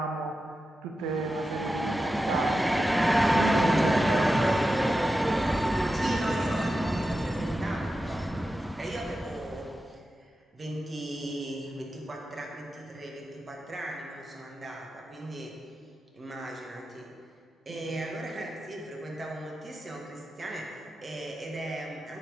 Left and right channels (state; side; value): normal; both; correlation 0.91